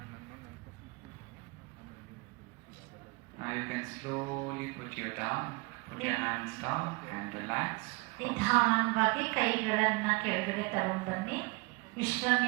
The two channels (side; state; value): left; quieter; 27.4 dB